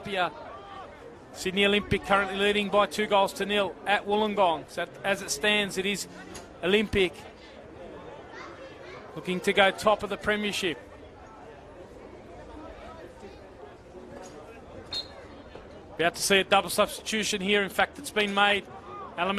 Sydney Olympic currently leading by 2-0 at Wollongong. So as it stands, it is Olympic looking to go top of the premiership. About to see a double substitution here. In fact, it's been made.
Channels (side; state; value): both; identical; correlation 1.00